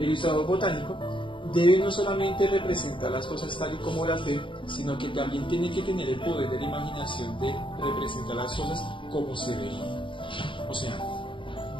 ilustrador botánico debe no solamente representar las cosas tal y como las ve, sino que también tiene que tener el poder de la imaginación de representar las cosas como se ven. O sea,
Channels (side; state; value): right; late; 0.24 ms